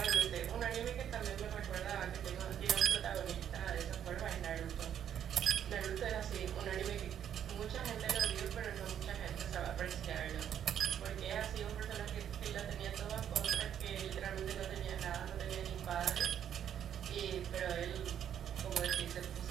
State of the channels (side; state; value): left; quieter; 9.5 dB